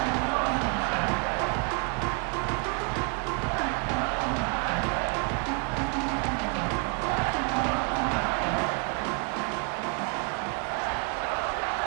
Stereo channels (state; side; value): quieter; left; 34.5 dB